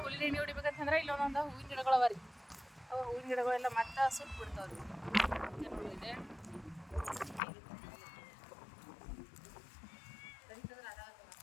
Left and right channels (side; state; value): right; drops out; at 7.4 s